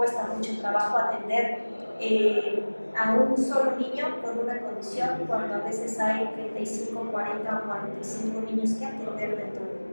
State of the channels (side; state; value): both; inverted; correlation -1.00